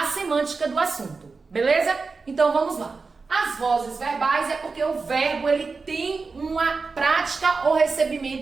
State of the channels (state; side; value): quieter; left; 4.4 dB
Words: semântica do assunto, beleza? Então vamos lá. As vozes verbais é porque o verbo ele tem uma prática ou